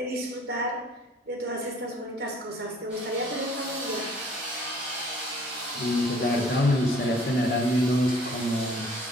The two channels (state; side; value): normal; both; correlation 0.56